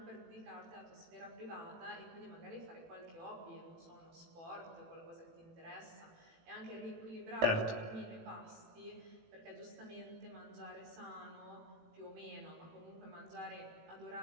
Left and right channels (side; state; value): left; late; 18 ms